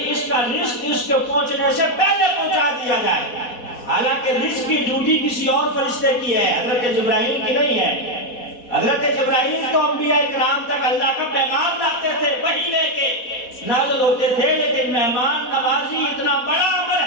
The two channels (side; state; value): right; late; 4.1 ms